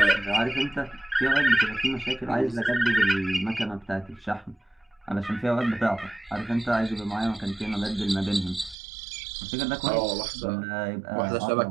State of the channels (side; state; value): left; drops out; at 8.8 s